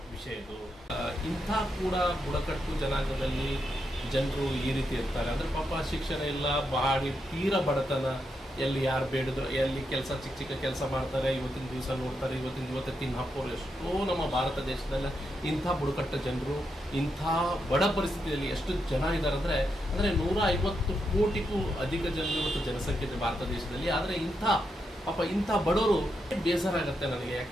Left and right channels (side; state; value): both; normal; correlation 0.83